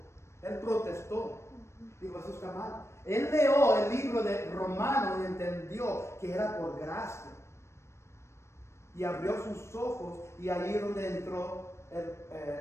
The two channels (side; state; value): right; late; 0.13 ms